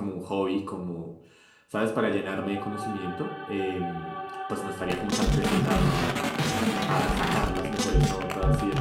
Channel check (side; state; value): both; identical; correlation 1.00